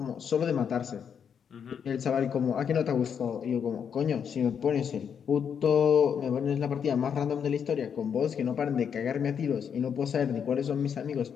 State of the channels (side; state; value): right; quieter; 7.5 dB